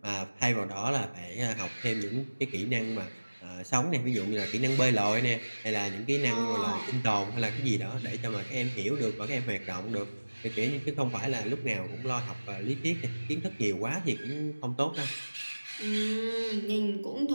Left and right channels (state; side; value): inverted; both; correlation -1.00